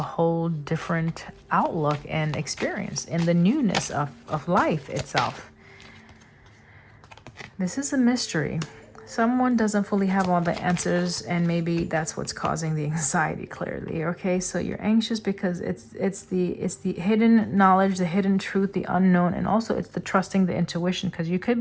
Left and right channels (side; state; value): both; identical; correlation 1.00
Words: whole different outlook and experience in the newness of life itself. This is a mystery. Someone doesn't fully have all the answers, and maybe that's what's causing the anxiety, clearly. Okay, so you're anxious because it's the hidden knowledge, the hidden truth, the unknown, and also it's the trusting the intuition, because you could